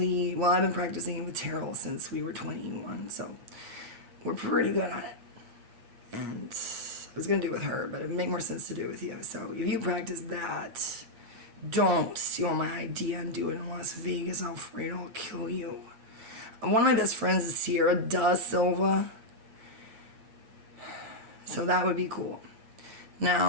well, I've been practicing it with Terrell since we were 21, so we're pretty good at it. And I was going to do it with her, but it would make more sense to do it with you. So if you practice that, don't steal my idea and do it in Las Vegas, Alfredo. I'll kill you. One of my best friends is Sierra Da Silva, so that would be cool.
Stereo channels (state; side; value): late; left; 8.3 ms